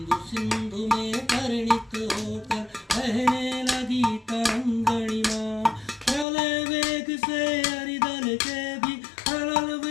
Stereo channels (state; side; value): drops out; right; at 6.2 s